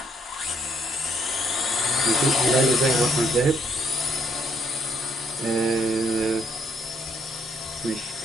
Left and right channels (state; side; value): normal; both; correlation 0.70